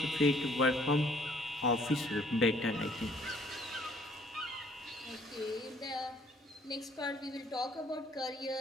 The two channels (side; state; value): both; normal; correlation 0.61